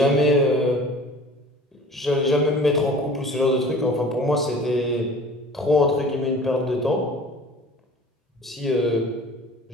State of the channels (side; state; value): both; normal; correlation 0.44